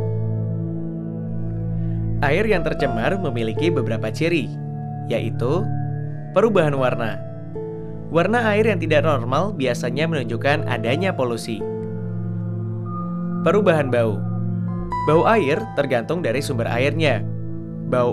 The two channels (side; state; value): both; identical; correlation 1.00